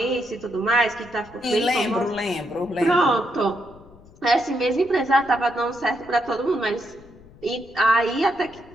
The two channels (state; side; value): noise; left; rumble, 23 dB below the sound